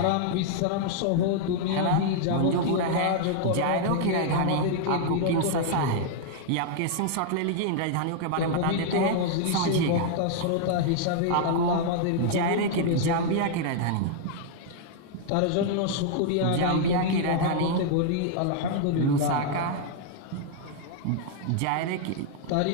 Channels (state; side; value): different; both; correlation -0.01